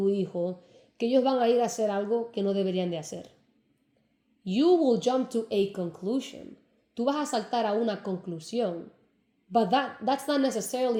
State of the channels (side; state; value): both; identical; correlation 1.00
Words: hijo que ellos van a ir a hacer algo que no deberían de hacer. You will jump to a conclusion. Tú vas a saltar a una conclusión. But that's not